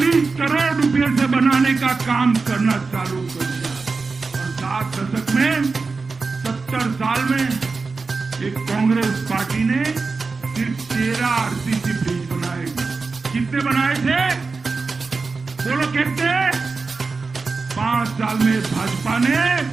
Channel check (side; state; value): left; quieter; 4.2 dB